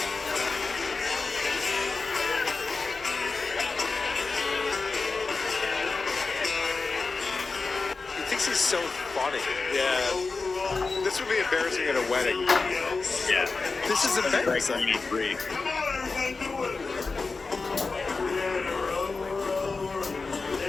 He thinks he's so funny. Yeah. This would be embarrassing at a wedding. Yeah. This is embarrassing. 83.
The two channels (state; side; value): quieter; right; 4.1 dB